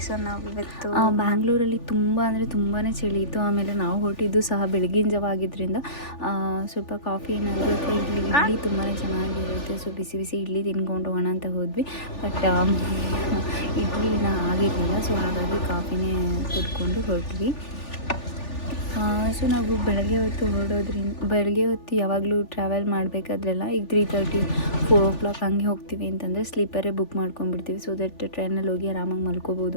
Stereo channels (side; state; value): right; late; 3.4 ms